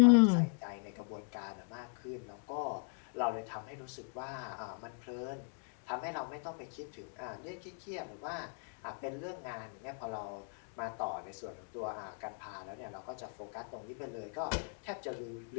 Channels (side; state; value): right; silent; 52 dB below the other